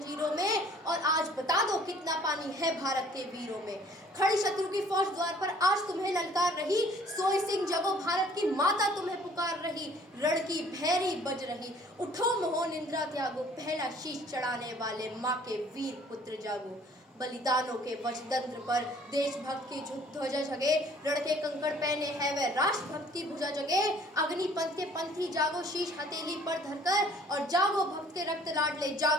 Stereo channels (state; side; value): normal; both; correlation 0.56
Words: में, और आज बता दो कितना पानी है भारत के वीरों में। खड़ी शत्रु की फौज द्वार पर आज तुम्हें ललकार रही, सोई सिंह जगो भारत की माता तुम्हें पुकार रही। रण की भैरी बज रही, उठो मोहो निंद्रा त्यागो, पहला शीश चढ़ाने वाले माँ के वीर पुत्र जागो। बलिदानों के वज्रतंत्र पर देशभक्त की ध्वजा जगे, रण के कंकड़ पहने है वह राष्ट्रभक्त की भुजा जगे। अग्निपंथ के पंथी जागो शीश हथेली पर धरकर, और जागो भक्त के रक्त लाडले